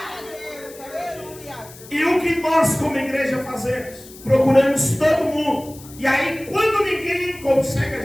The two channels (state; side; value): noise; left; hiss, 19 dB below the sound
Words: E o que nós como igreja fazemos? Procuramos todo mundo, e aí quando ninguém consegue, a